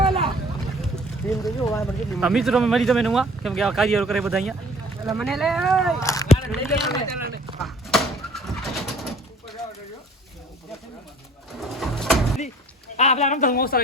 મિત્રો અમે મળી તમે નવા કેમ કે આ કાર્ય કરે બધા અહીંયા. મને લે આપલા રમતા હું ઓસા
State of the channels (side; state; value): both; normal; correlation 0.52